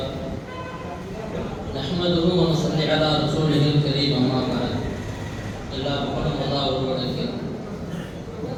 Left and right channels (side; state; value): both; identical; correlation 1.00